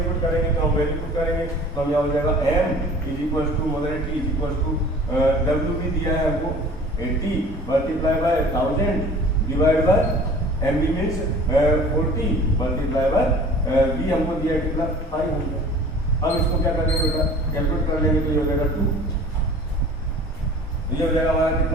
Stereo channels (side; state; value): both; normal; correlation 0.45